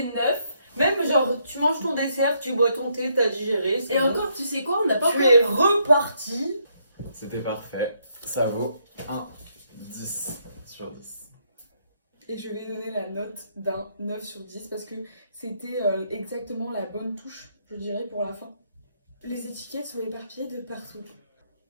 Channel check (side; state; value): both; inverted; correlation -0.74